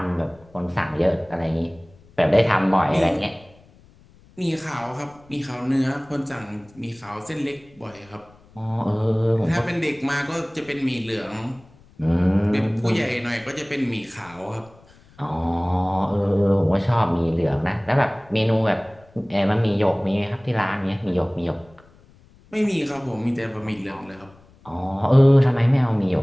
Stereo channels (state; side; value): noise; left; rumble, 27 dB below the sound